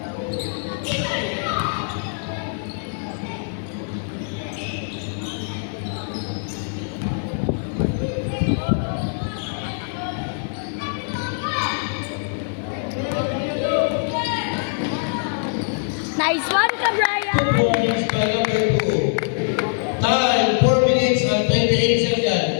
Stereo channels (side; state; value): right; silent; 63 dB below the other